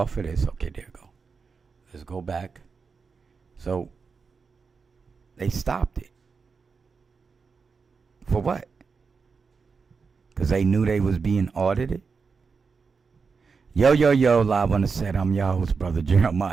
of this. Okay, there we go. Let's go back. So they stopped it. For what? Because they knew they was being audited? Yo, live on the set. I'm your host, Brother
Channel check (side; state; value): left; quieter; 5.1 dB